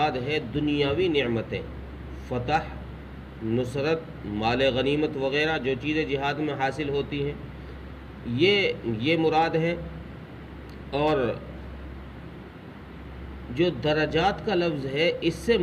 ہے دنیاوی نعمتیں، فتح، نصرت، مال غنیمت وغیرہ جو چیزیں جہاد میں حاصل ہوتی ہیں، یہ مراد ہے۔ اور جو درجات کا لفظ ہے اس سے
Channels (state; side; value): identical; both; correlation 1.00